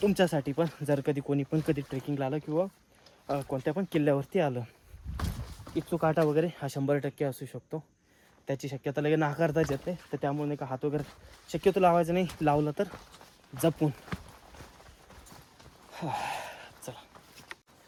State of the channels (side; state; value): both; identical; correlation 1.00